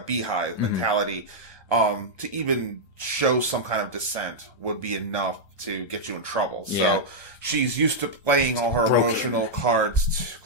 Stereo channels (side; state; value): right; late; 1.2 ms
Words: beehive mentality, to even show some kind of dissent would be enough to get you in trouble. Yeah. So she's used to playing all her emotional cards